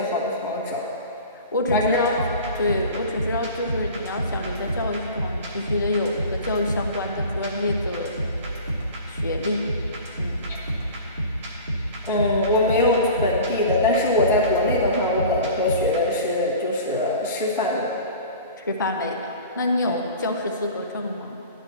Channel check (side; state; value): both; inverted; correlation -0.39